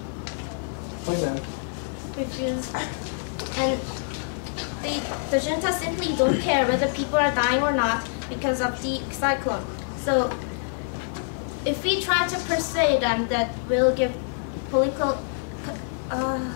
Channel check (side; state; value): right; silent; 60 dB below the other